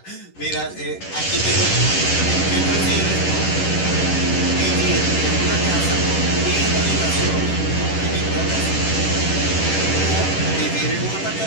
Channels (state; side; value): late; right; 10 ms